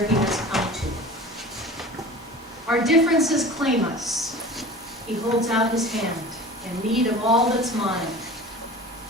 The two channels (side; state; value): both; normal; correlation 0.38